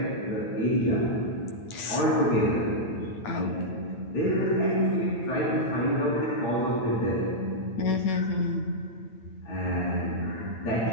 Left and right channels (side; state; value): right; late; 9.0 ms